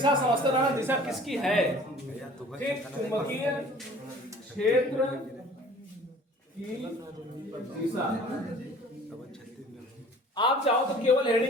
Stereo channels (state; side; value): normal; both; correlation 0.48